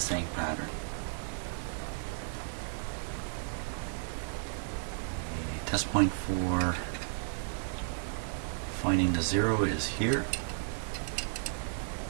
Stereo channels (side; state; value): left; silent; digital silence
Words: pattern. Test point for finding the 0 is here.